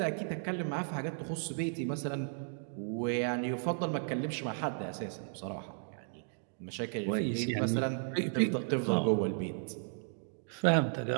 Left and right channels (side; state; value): left; silent; digital silence